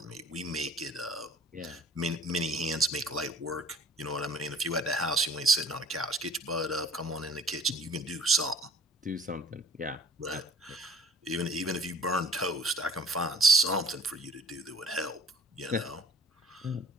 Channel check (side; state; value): both; normal; correlation 0.49